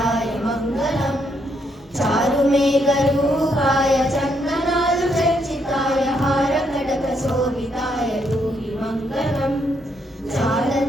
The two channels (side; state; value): both; normal; correlation 0.75